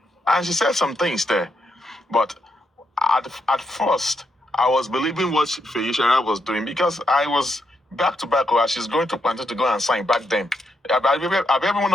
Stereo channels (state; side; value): normal; both; correlation 0.81